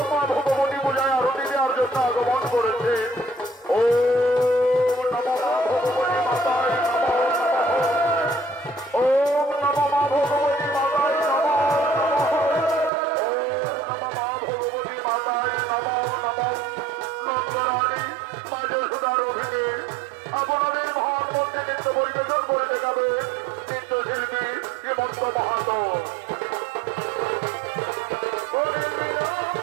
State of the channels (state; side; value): drops out; left; at 12.9 s